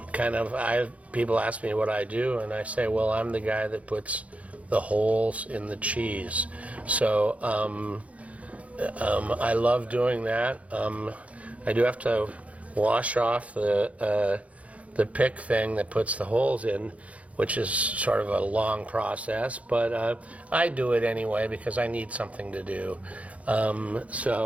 people ask me what I do, and I say, well, I'm the guy that puts the holes in the cheese. So I love doing that. I do have to wash off the pick thing that puts the holes in, which is sort of a long process, but I do it anyway because I need something to do.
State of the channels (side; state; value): left; late; 0.066 ms